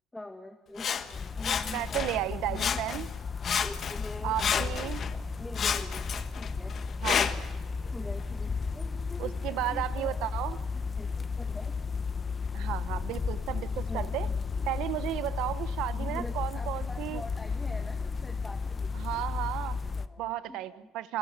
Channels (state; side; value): normal; both; correlation 0.67